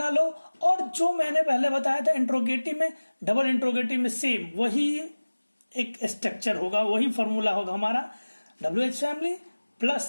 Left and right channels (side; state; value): both; inverted; correlation -1.00